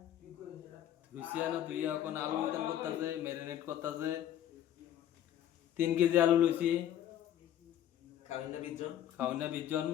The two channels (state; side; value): quieter; right; 11.2 dB